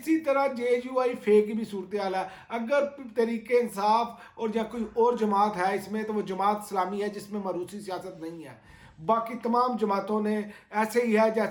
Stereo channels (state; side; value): identical; both; correlation 1.00